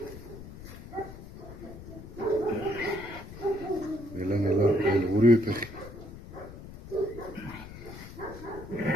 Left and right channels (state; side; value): noise; left; rumble, 13 dB below the sound